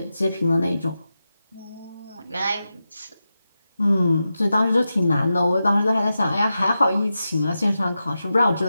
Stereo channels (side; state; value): both; inverted; correlation -0.91